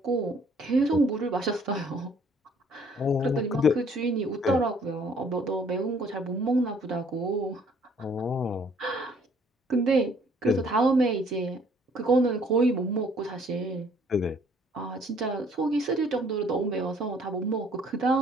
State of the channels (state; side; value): normal; both; correlation 0.60